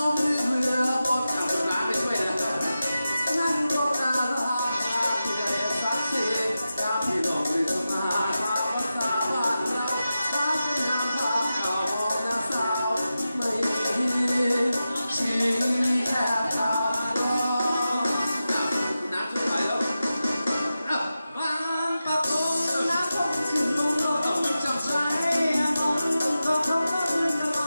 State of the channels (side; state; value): both; inverted; correlation -0.92